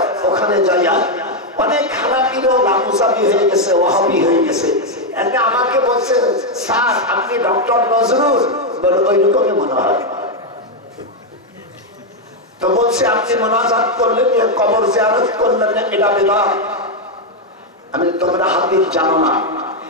ওখানে যাইয়া অনেক হানাফিরও লামুসাবি হয়ে গেছে, ওয়াহাবি হয়ে গেছে। এতে আমাকে বলছে স্যার আপনি ডক্টর নজরুল, বলে ওই রকমই মনে হয়। তো বলছে আপনি মুনাজাত করলেন, কবর জিয়ারত করলেন, এটা বিদআত। আমি তোমরা হাদিস জানো না,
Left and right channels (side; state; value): both; normal; correlation 0.02